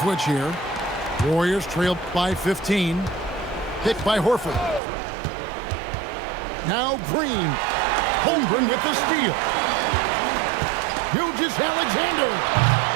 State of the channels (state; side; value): drops out; left; at 4.8 s